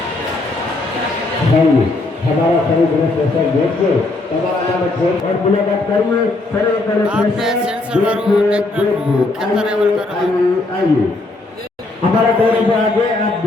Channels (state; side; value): quieter; right; 3.0 dB